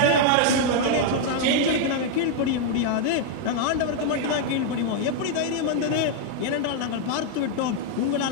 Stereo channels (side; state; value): both; different; correlation 0.00